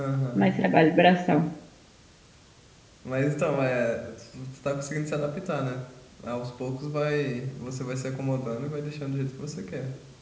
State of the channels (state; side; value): identical; both; correlation 1.00